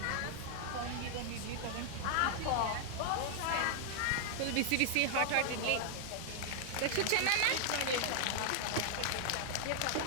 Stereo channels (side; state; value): both; different; correlation 0.00